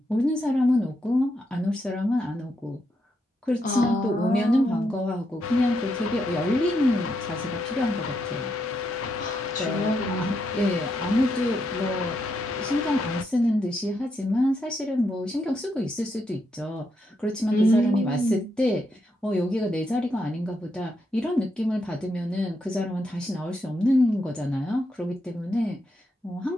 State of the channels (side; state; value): both; normal; correlation 0.81